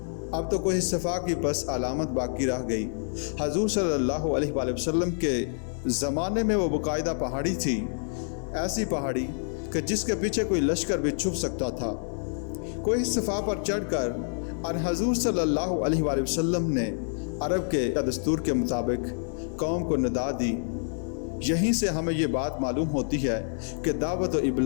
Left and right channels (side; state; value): right; silent; 60 dB below the other